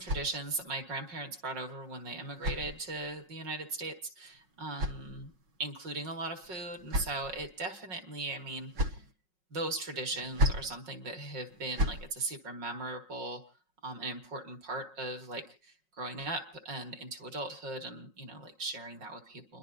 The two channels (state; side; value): late; left; 5.4 ms